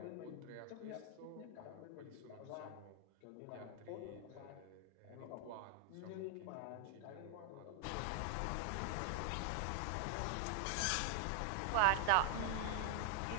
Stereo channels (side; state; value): both; different; correlation 0.00